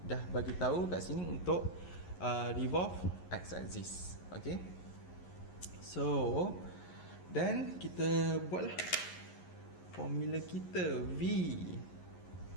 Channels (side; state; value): right; late; 11 ms